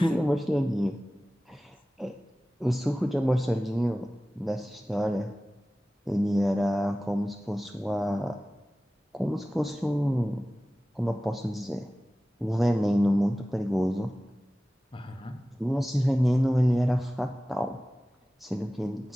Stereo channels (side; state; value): both; normal; correlation 0.97